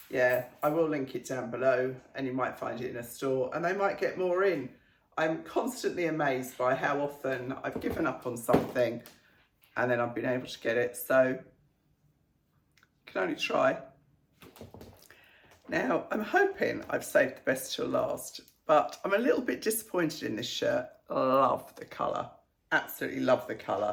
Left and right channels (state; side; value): identical; both; correlation 1.00